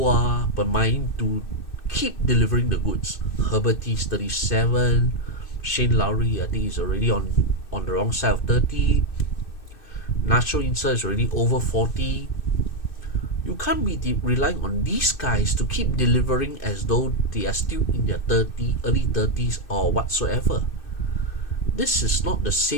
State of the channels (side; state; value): right; late; 2.6 ms